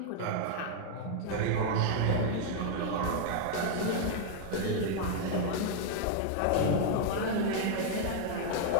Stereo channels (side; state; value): both; different; correlation 0.00